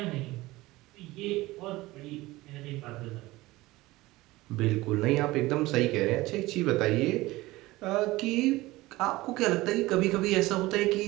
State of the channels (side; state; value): left; quieter; 19.3 dB